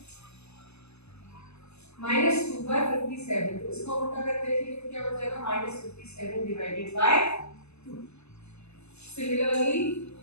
-2/57, तो इसको उल्टा करके लिखेंगे तो क्या हो जाएगा, -57 डिवाइडेड बाय 2। सिमिलरली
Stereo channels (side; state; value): right; late; 0.80 ms